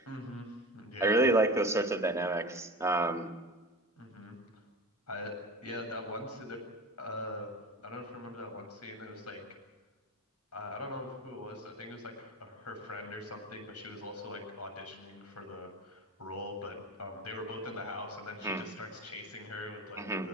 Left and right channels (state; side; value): normal; both; correlation 0.31